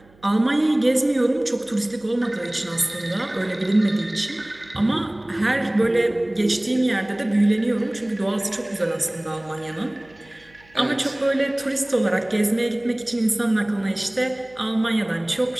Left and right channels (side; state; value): right; noise; hum, 28 dB below the sound